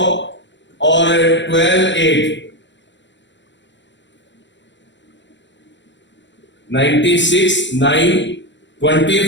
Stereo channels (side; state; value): right; late; 0.53 ms